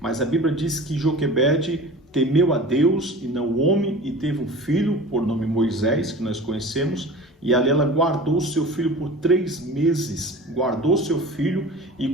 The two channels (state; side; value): normal; both; correlation 0.38